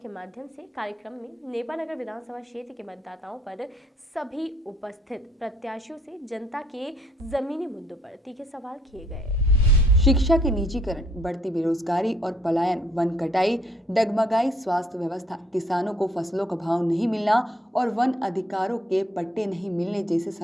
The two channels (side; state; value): both; normal; correlation 0.66